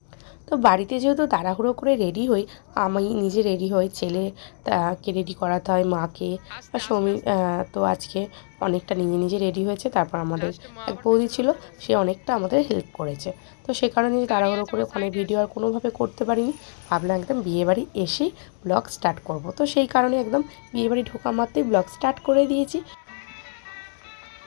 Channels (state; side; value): silent; right; 60 dB below the other